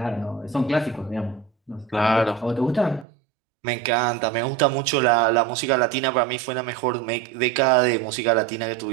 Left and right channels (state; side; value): drops out; left; at 3.1 s